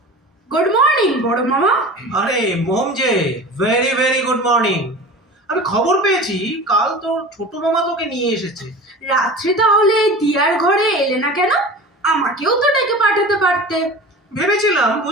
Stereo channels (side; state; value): both; normal; correlation 0.35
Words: গুড মর্নিং বড় মামা। আরে মোম যে, ভেরি ভেরি গুড মর্নিং। আমি খবর পেয়েছি কাল তোর ছোট মামা তোকে নিয়ে এসেছে। রাত্রে তাহলে দিয়ার ঘরে এলে না কেন? আমাকেও তো ডেকে পাঠাতে পারতে। ভেবেছিলাম